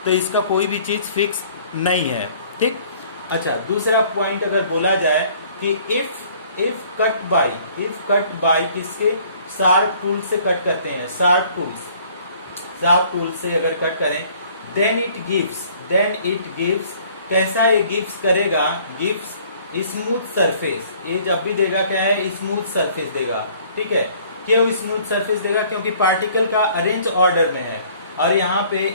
तो इसका कोई भी चीज फिक्स नहीं है, ठीक। अच्छा, दूसरा पॉइंट अगर बोला जाए कि इफ कट बाई किसके, शार्प टूल से कट करते हैं, शार्प टूल से अगर कट करें, देन इट गिव्स, कैसा ये गिव्स करेगा, गिव्स स्मूथ सरफेस, ये जब भी देगा क्या है, स्मूथ सरफेस देगा, ठीक है। क्यों स्मूथ सरफेस देगा, क्योंकि पार्टिकल का अरेंज ऑर्डर में है, और यहाँ पे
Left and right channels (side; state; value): both; inverted; correlation -0.56